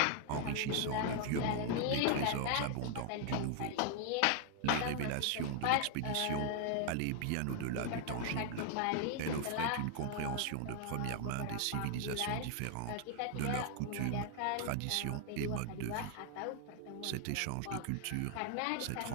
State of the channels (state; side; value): different; both; correlation 0.00